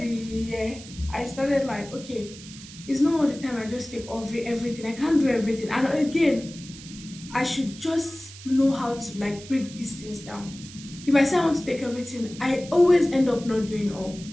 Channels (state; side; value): noise; right; hiss, 16 dB below the sound